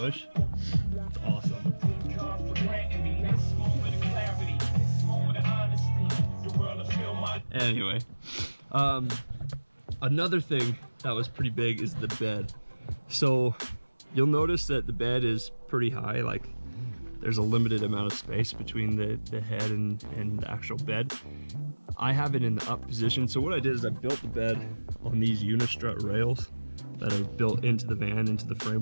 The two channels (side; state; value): both; inverted; correlation -1.00